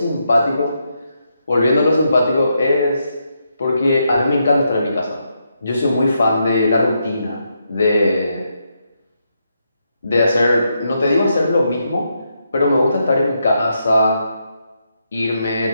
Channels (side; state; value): both; inverted; correlation -0.81